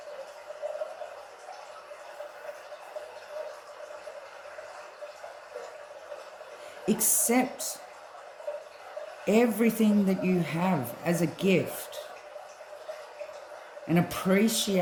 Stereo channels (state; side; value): identical; both; correlation 1.00